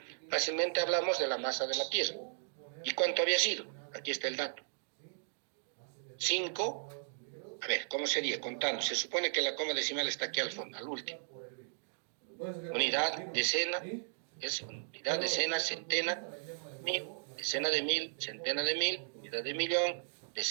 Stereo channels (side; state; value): left; silent; digital silence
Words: fácilmente hablamos de la masa de la Tierra. ¿Y cuánto había sido? Aquí está el dato. 5, a ver, ¿cómo sería? Contando. Se supone que la coma decimal está aquí al fondo, al último. Unidad, decena, es unidad, decena, centena, mil, decena de mil, centena de mil, unidad de millón,